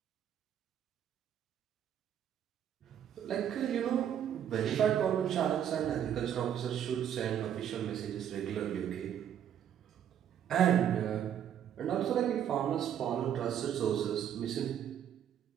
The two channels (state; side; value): quieter; left; 9.6 dB